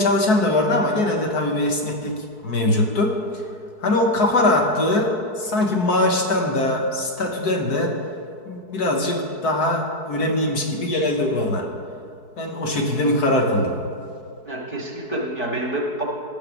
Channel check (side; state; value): right; late; 4.7 ms